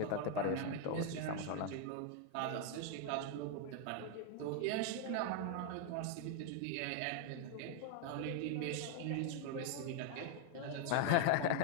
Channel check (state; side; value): different; both; correlation 0.00